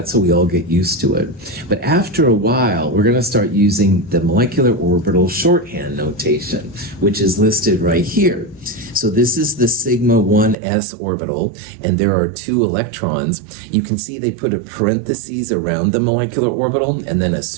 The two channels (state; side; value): drops out; left; at 10.6 s